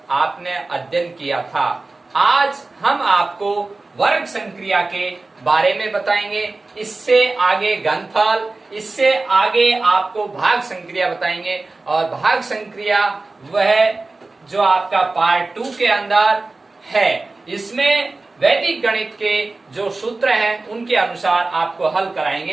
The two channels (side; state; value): left; quieter; 3.4 dB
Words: आपने अध्ययन किया था। आज हम आपको वर्ग संक्रिया के बारे में बताएंगे। इससे आगे घनफल, इससे आगे आपको भाग संक्रिया बताएंगे और भाग संक्रिया वह जो आपका पार्ट 2 के अंदर है। इसमें वैदिक गणित के जो सूत्र हैं उनके अनुसार आपको हल